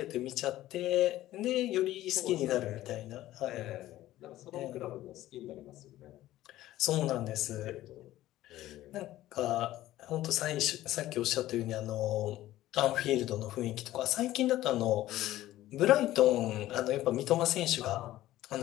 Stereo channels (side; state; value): right; quieter; 14.9 dB